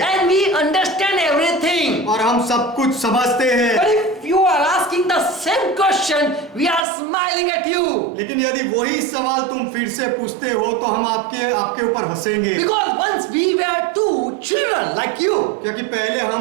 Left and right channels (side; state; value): left; drops out; at 6.8 s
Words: And we understand everything. और हम सब कुछ समझते But हैं। if you are asking the same question, we are smiling at you. लेकिन यदि वही सवाल तुम फिर से पूछते हो तो हम आपके ऊपर हंसेंगे, Because once we were two children like you, क्योंकि पहले